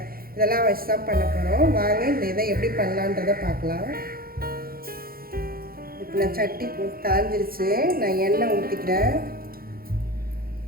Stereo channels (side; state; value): left; late; 0.43 ms